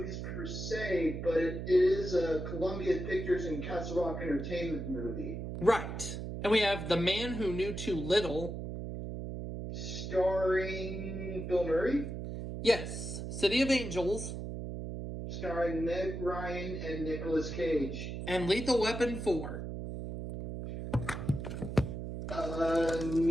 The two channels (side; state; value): right; noise; hum, 5 dB below the sound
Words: per se, but it is a Columbia Pictures and Castle Rock Entertainment movie. Right. And we have The Man Who Knew Too Little. Starring Bill Murray. Yes. City of Angels. Starring Meg Ryan and Nicolas Cage. And Lethal Weapon 4.